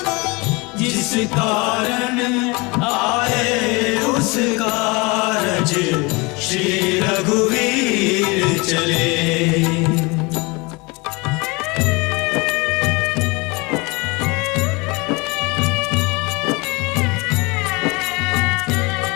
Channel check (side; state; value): right; quieter; 26.5 dB